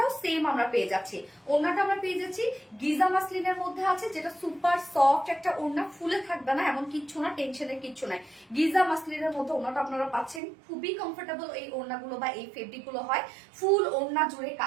সেম আমরা পেয়ে যাচ্ছি। ওন্নাটা আমরা পেয়ে যাচ্ছি গিজা মাসলিনের মধ্যে আছে, যেটা সুপার সফট একটা ওন্না, ফুলে থাকবে না এমন কিচ্ছু না, টেনশনের কিচ্ছু নাই। গিজা মাসলিনের মধ্যে ওন্নাটা আপনারা পাচ্ছেন, খুবই কমফোর্টেবল এই ওন্নাগুলো বা এই ফেব্রিক গুলো হয়। ফুল ওন্না জুড়ে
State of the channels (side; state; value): left; drops out; at 10.4 s